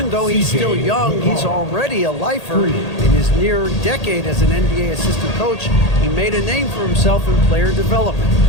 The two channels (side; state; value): right; late; 1.8 ms